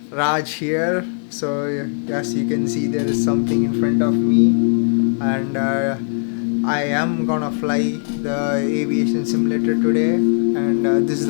Raj here. So as you can see, there is something in front of me, and I am gonna fly the aviation simulator today. And this is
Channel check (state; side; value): silent; right; 66 dB below the other